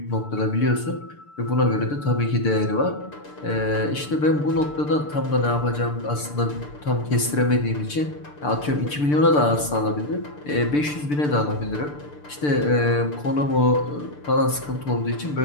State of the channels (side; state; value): right; late; 6.8 ms